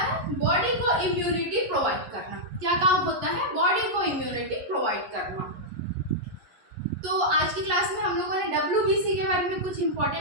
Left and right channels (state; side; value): late; left; 11 ms